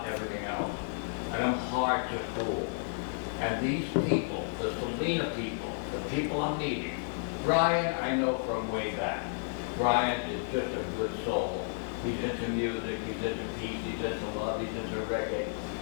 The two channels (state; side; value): silent; right; digital silence